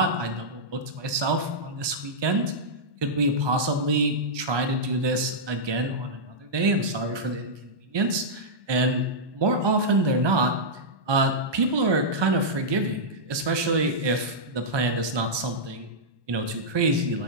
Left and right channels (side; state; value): left; late; 1.2 ms